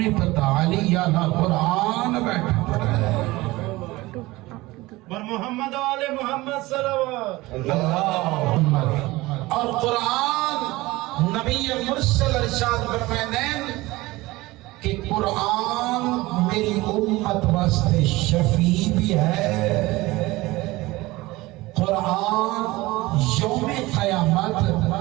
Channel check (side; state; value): left; quieter; 20.1 dB